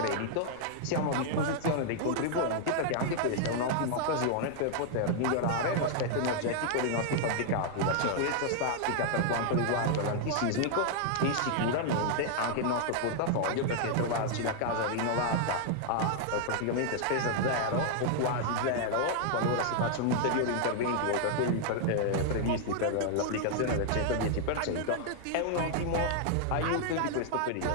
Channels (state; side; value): different; both; correlation 0.00